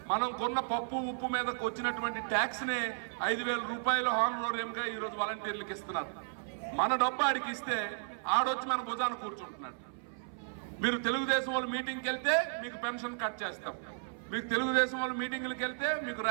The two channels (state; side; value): silent; left; 55 dB below the other